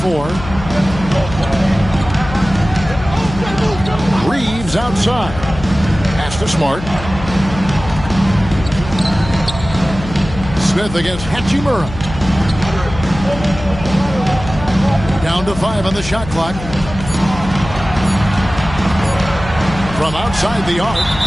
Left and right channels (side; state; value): left; noise; hum, 11 dB below the sound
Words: Reeves outside. Pass to Smart. Smith against Hachimura. Down to 5 on the shot clock. From outside the arc,